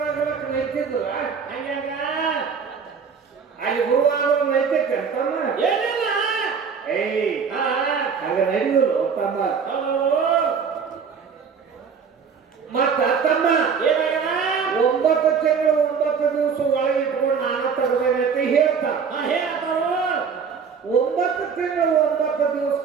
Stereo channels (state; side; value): quieter; left; 6.1 dB